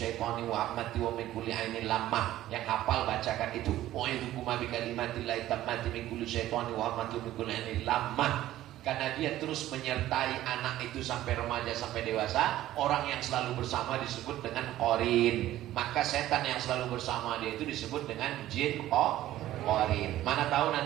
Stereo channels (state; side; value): quieter; left; 14.1 dB